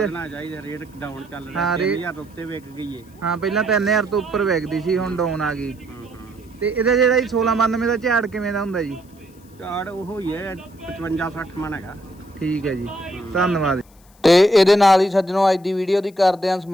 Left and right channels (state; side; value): noise; left; hiss, 30 dB below the sound